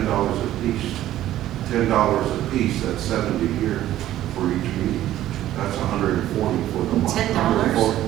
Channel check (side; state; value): left; quieter; 13.4 dB